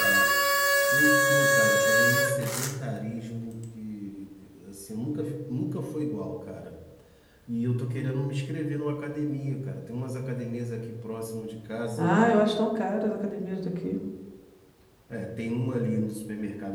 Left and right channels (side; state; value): both; identical; correlation 1.00